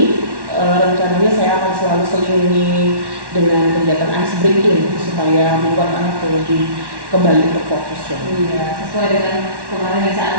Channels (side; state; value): left; late; 1.1 ms